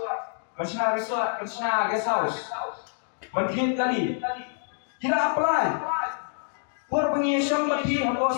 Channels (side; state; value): right; silent; 60 dB below the other